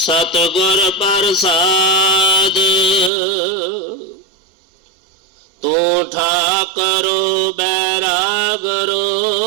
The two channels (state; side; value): drops out; left; at 3.1 s